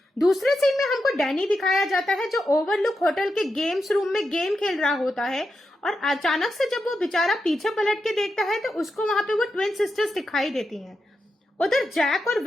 दूसरे सीन में हमको डैनी दिखाया जाता है जो ओवरलुक होटल के गेम्स रूम में गेम खेल रहा होता है और अचानक से जब वो बेचारा पीछे पलट के देखता है तो उसको वहां पे वो ट्विन सिस्टर्स दिखाई देती हैं। उधर जैक और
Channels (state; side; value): normal; both; correlation 0.87